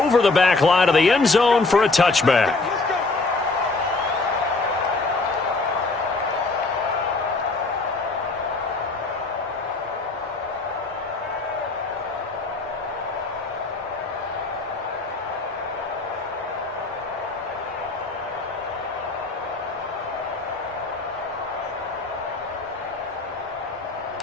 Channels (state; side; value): quieter; right; 3.6 dB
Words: the back line of the end zone for a touchback.